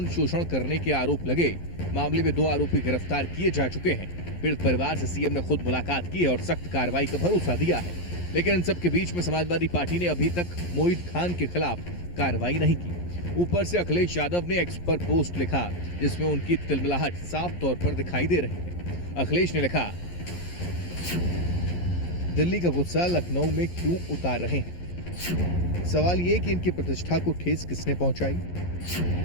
शोषण करने के आरोप लगे, मामले में 2 आरोपी गिरफ्तार किए जा चुके हैं। पीड़ित परिवार से सीएम ने खुद मुलाकात की है और सख्त कार्रवाई का भरोसा दिया है। लेकिन इन सब के बीच में समाजवादी पार्टी ने अभी तक मोहित खान के खिलाफ कार्रवाई नहीं की। ऊपर से अखिलेश यादव ने एक्स पर पोस्ट लिखा जिसमें उनकी तिलमिलाहट साफ तौर पर दिखाई दे रही है। अखिलेश ने लिखा, दिल्ली का गुस्सा लखनऊ में क्यों उतार रहे हैं? सवाल ये कि इनकी प्रतिष्ठा को ठेस किसने पहुंचाई?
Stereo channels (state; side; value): late; right; 11 ms